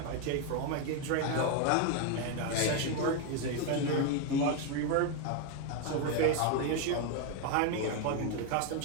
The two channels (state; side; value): different; both; correlation 0.01